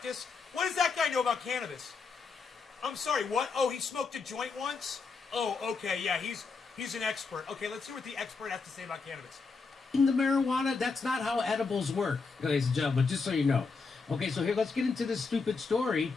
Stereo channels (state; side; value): quieter; right; 4.6 dB